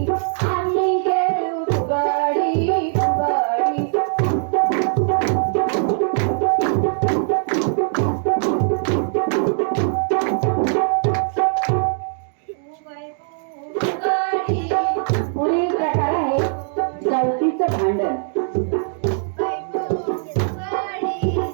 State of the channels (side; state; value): left; silent; digital silence